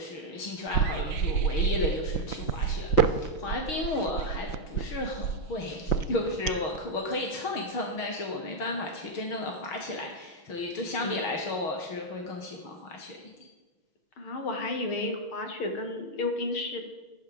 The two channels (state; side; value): late; right; 6.4 ms